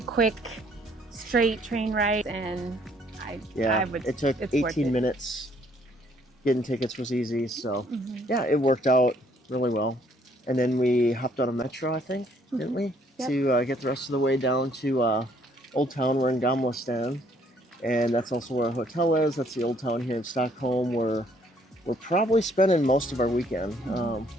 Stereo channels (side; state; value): both; normal; correlation 0.65